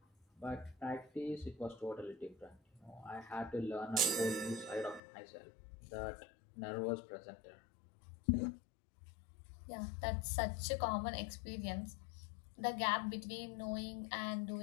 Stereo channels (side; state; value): right; drops out; at 5.0 s